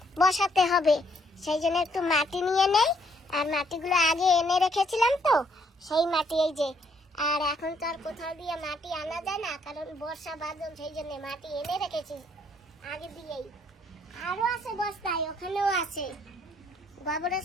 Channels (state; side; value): normal; both; correlation 0.68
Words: বসাতে হবে। সেই জন্য একটু মাটি নিয়ে নেই, আর মাটিগুলো আগে এনে রেখেছিলাম, তো সেই মাটি এই যে। আর এখন তো আর কোথাও দিয়ে মাটি আনা যায় না, কারণ বর্ষা বাদল, সেই জন্য মাটি এনে রেখেছি আগে দিয়েই। আরো আছে বস্তায়, ওখানেও আছে গোবরের